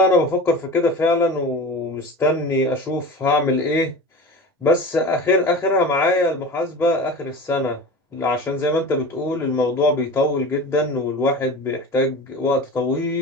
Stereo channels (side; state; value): both; normal; correlation 0.33